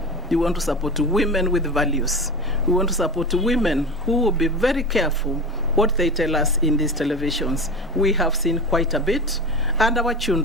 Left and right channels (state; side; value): normal; both; correlation 0.29